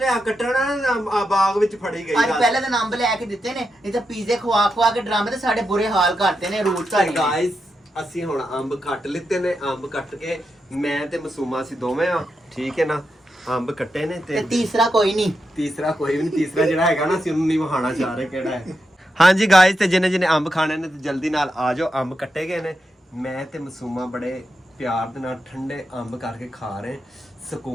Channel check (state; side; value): normal; both; correlation 0.86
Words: ਕੱਟਣਾ ਨਾ ਬਾਗ ਵਿੱਚ ਫੜੀ ਗਈ आज पहले दिन अंब लेके दिते ने, नहीं तो पिज़्ज़े खवा खवा के ड्रामे ते साडे बुरे हाल करते ने रोज का। ਗਾਇਸ ਅਸੀਂ ਹੁਣ ਅੰਬ ਕੱਟ ਲਿੱਤੇ ਨੇ, ਅੰਬ ਕੱਟ ਕੇ ਮੈਂ ਤੇ ਮਾਸੂਮਾ ਅਸੀਂ ਦੋਵੇਂ ਆ, ਠੀਕ ਹੈ ਨਾ। ਅੰਬ ਕੱਟੇ ਨੇ ਤੇ ਤੇ तीसरा कोई नहीं। ਤੀਸਰਾ ਕੋਈ ਵੀ ਨਹੀਂ, ਤੀਸਰਾ ਜਿਹੜਾ ਹੈਗਾ ਨਾ ਅਸੀਂ ਉਹਨੂੰ ਨਹੀਂ ਵਹਾਣਾ ਚਾਹ ਰਹੇ ਕਿਹੜਾ ਹੈ। ਹਾਂਜੀ ਗਾਇਸ ਤੇ ਜਿਹਨੇ ਜਿਹਨੇ ਅੰਬ ਖਾਣੇ ਨੇ ਤੇ ਜਲਦੀ ਨਾਲ ਆ ਜਾਓ, ਅੰਬ ਕੱਟੇ ਗਏ ਨੇ। ਮੈਂ ਤੇ ਮਾਸੂਮਾ ਬੜੇ ਪਿਆਰ ਦੇ ਨਾਲ ਠੰਡੇ ਅੰਬ ਕਰਕੇ ਖਾ ਰਹੇ,